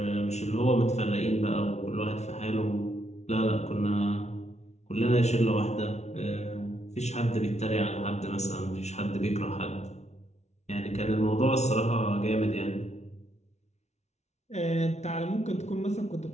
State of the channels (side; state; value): right; late; 0.32 ms